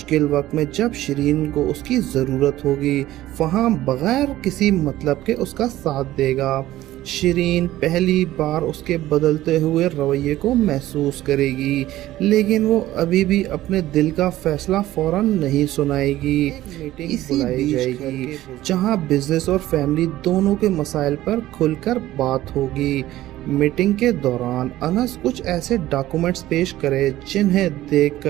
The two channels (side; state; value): left; quieter; 15.1 dB